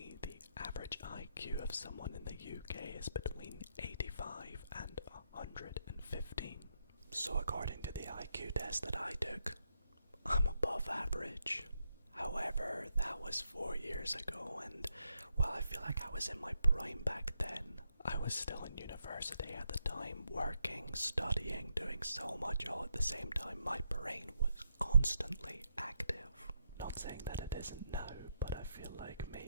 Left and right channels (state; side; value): inverted; both; correlation -0.80